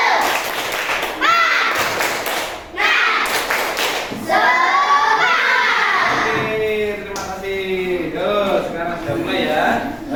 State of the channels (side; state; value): both; identical; correlation 1.00